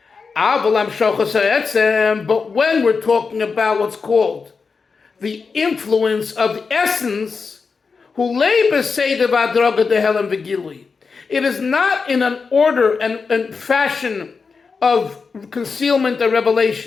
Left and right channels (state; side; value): quieter; right; 5.0 dB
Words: But when we're talking about what's called the influence of the essence, it is not in an order and fashion of concealment and